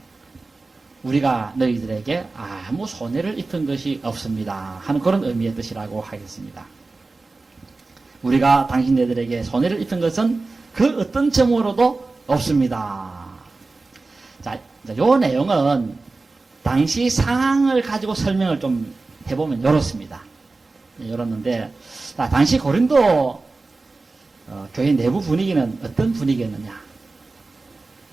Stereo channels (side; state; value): left; quieter; 3.6 dB